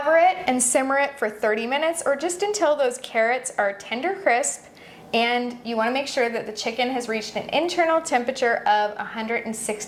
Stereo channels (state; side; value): identical; both; correlation 1.00